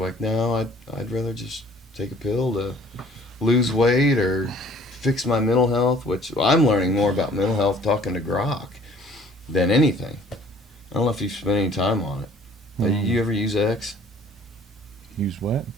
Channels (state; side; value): normal; both; correlation 0.54